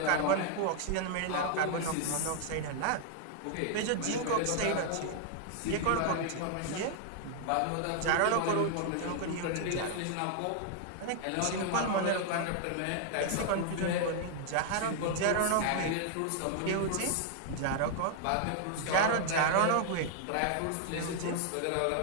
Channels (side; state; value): both; different; correlation 0.00